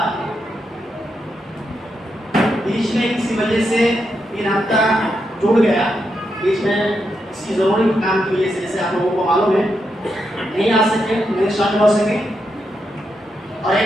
بیچ میں کسی وجہ سے 3 ہفتہ ٹوٹ گیا. بیچ میں کسی ضروری کام کی وجہ سے جیسے آپ لوگوں کو معلوم ہے نہیں آ سکے نہیں شامل ہو سکے اور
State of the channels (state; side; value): normal; both; correlation 0.83